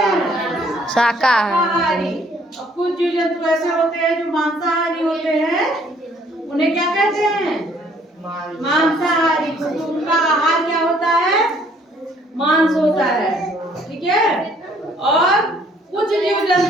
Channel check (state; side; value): normal; both; correlation 0.62